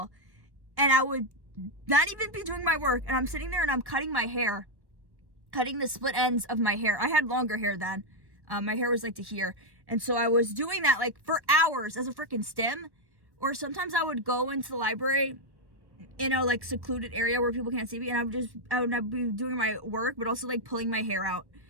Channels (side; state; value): left; late; 1.1 ms